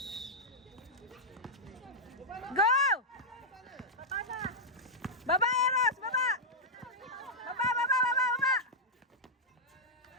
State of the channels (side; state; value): both; normal; correlation -0.08